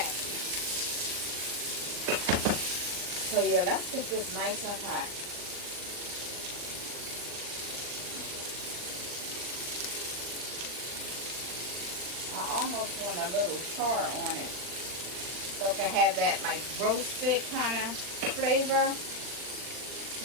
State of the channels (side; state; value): left; late; 39 ms